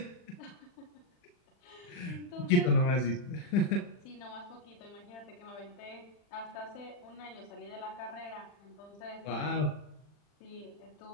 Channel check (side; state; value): right; late; 40 ms